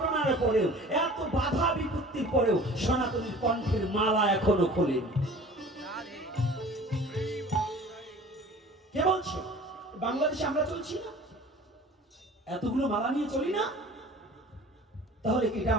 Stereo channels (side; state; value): both; normal; correlation 0.44